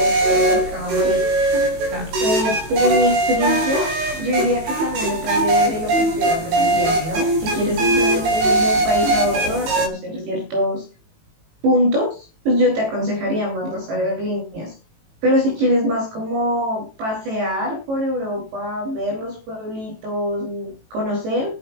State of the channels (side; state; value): left; late; 18 ms